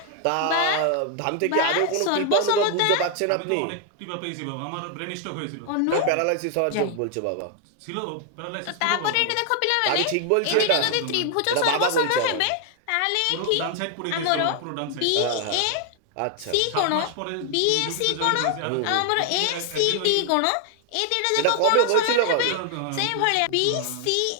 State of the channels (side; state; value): both; different; correlation 0.00